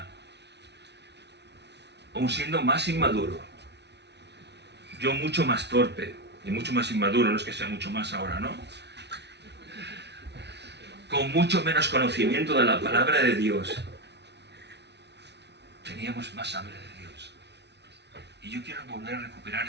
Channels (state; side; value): late; left; 0.50 ms